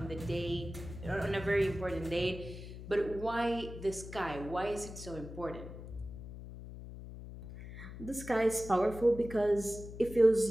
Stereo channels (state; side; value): noise; left; hum, 12 dB below the sound